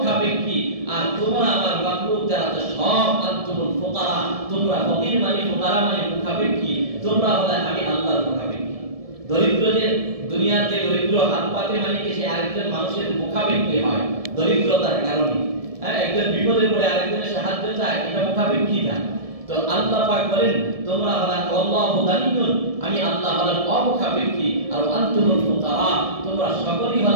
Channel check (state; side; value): late; left; 1.7 ms